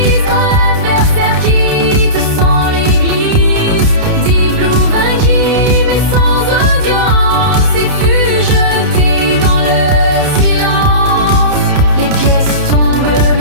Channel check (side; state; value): left; late; 30 ms